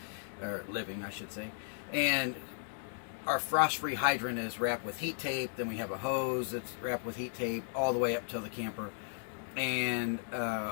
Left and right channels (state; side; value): silent; right; digital silence